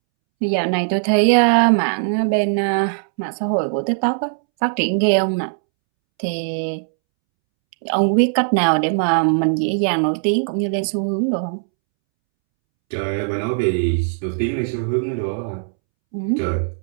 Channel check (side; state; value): left; silent; 66 dB below the other